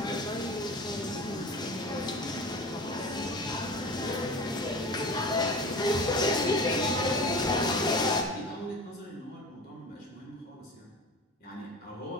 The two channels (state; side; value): normal; both; correlation 0.34